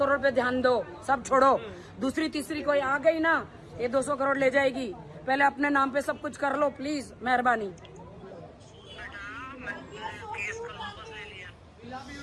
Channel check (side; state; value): both; identical; correlation 1.00